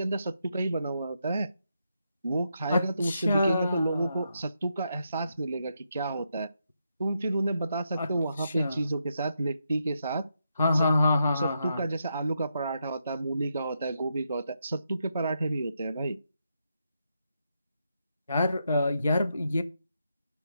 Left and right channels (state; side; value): inverted; both; correlation -0.82